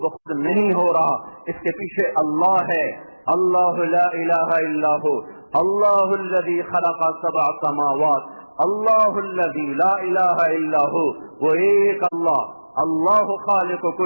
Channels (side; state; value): both; inverted; correlation -1.00